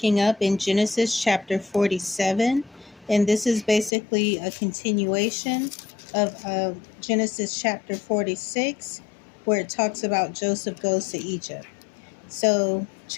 up in Genesis chapter 47. And this is basically a continuation of Genesis chapter 46, where it talks about Joseph goes to Egypt. So,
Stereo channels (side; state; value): right; drops out; at 3.9 s